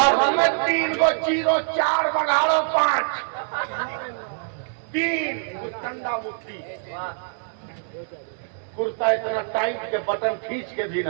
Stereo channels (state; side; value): silent; left; digital silence